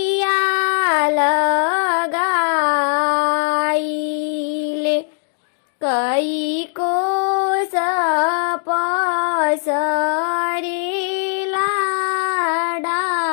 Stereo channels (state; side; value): silent; right; digital silence